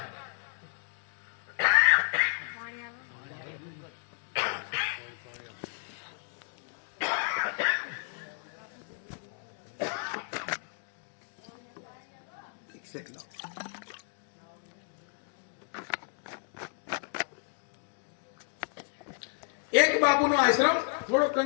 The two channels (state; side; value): silent; right; digital silence